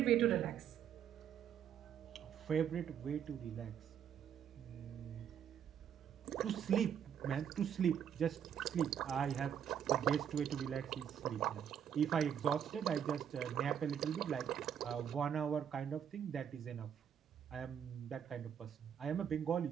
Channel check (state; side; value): quieter; left; 8.7 dB